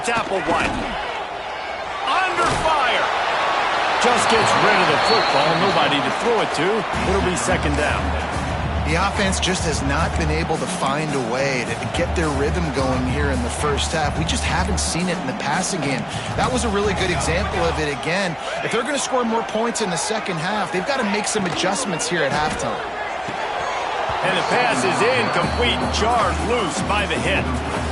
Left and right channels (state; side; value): identical; both; correlation 1.00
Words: Applewhite. Under fire. Just gets rid of the football. Nobody to throw it to. It'll be 2nd down. The offense just has not been able to find a way to get their rhythm going here in the first half. We just haven't seen it in the passing game. That was a really good example of it again. If they're going to score more points in the second half, they've got to make some adjustments here at halftime. And the pass is incomplete, jarred loose by the hit.